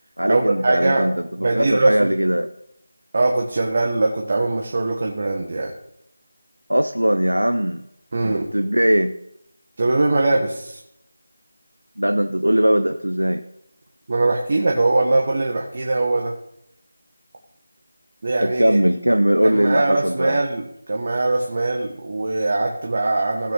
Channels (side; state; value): both; inverted; correlation -0.98